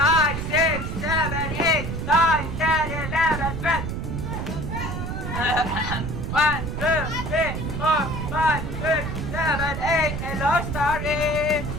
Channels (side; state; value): right; noise; rumble, 4 dB below the sound